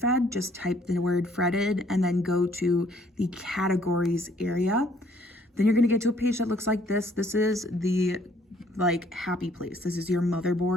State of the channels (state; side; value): normal; both; correlation 0.63